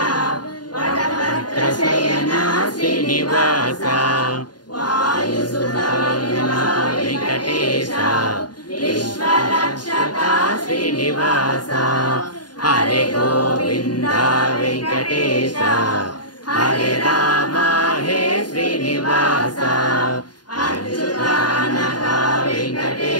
వటపత్ర శయన శ్రీనివాస వాయుసుధన వెంకటేశ విశ్వరక్షక శ్రీనివాస హరే గోవింద వెంకటేశ హరే రామ హే శ్రీనివాస అచ్యుతానక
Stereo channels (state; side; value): late; right; 0.70 ms